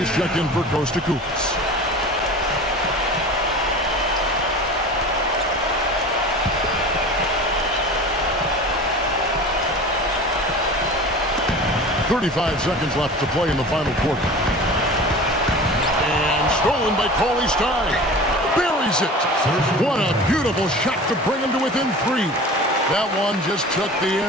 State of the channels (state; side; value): normal; both; correlation 0.37